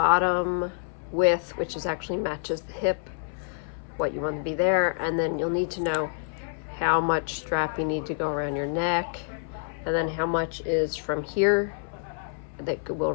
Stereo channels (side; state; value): right; silent; 59 dB below the other